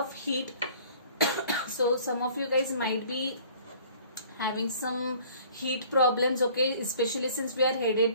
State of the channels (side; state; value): both; inverted; correlation -0.52